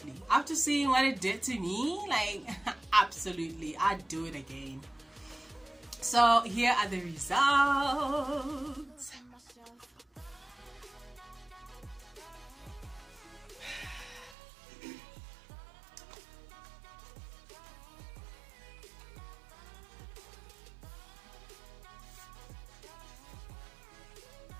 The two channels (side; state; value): left; drops out; at 14.4 s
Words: After seeing what it did to me, like, absolutely, I'd do it again. So here are the results.